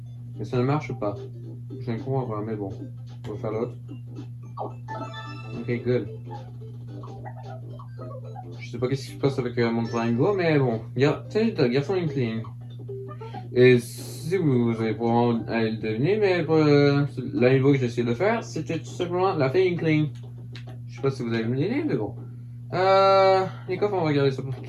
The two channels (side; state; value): both; identical; correlation 1.00